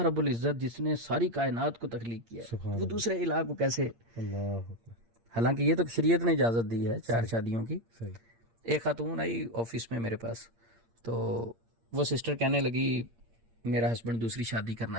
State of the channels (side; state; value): left; late; 8.7 ms